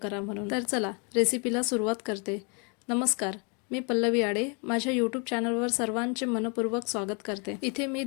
म्हणून. तर चला रेसिपीला सुरुवात करते. नमस्कार, मी पल्लवी आडे. माझ्या यूट्यूब चॅनलवर सर्वांचे मनपूर्वक स्वागत करते. इथे मी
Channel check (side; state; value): right; quieter; 35.0 dB